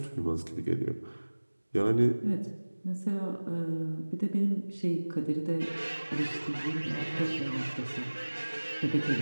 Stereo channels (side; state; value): both; inverted; correlation -1.00